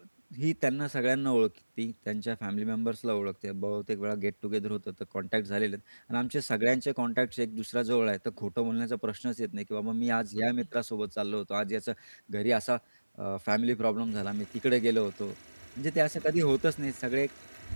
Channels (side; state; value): both; inverted; correlation -1.00